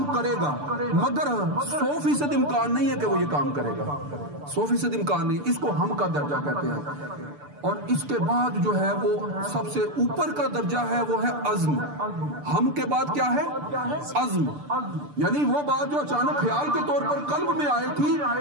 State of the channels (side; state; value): left; late; 6.8 ms